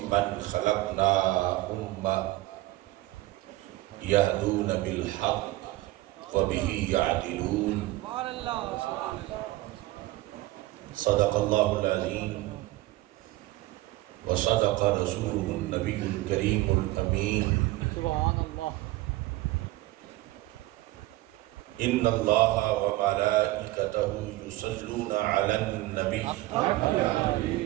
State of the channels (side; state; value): left; quieter; 18.2 dB